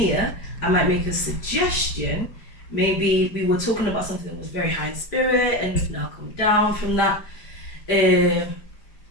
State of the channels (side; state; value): right; late; 5.0 ms